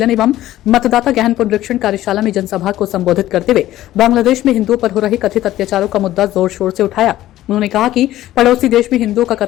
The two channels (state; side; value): quieter; right; 14.3 dB